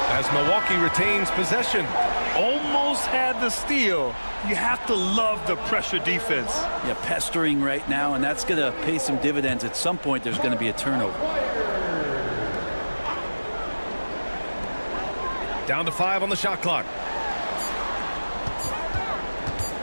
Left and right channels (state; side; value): inverted; both; correlation -1.00